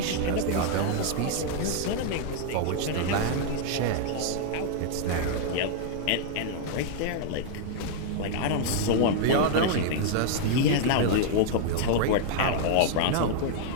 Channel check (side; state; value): both; different; correlation 0.00